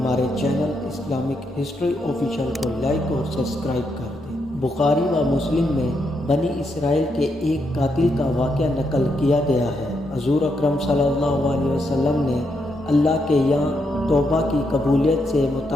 چینل اسلامک ہسٹری آفیشیل کو لائک اور سبسکرائب کر دیں۔ بخاری و مسلم میں بنی اسرائیل کے ایک قاتل کا واقعہ نقل کیا گیا ہے۔ حضور اکرم صلی اللہ علیہ وسلم نے اللہ کے یہاں توبہ کی قبولیت سے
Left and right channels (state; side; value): normal; both; correlation 0.80